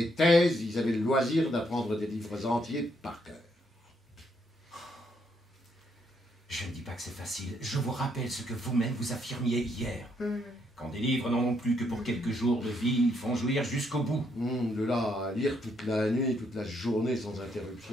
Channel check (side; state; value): both; normal; correlation 0.74